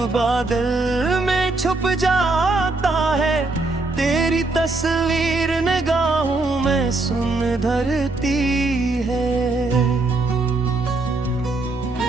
बादल में छुप जाता है, तेरी तस्वीर निगाहों में सुन धरती है।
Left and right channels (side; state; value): left; quieter; 3.3 dB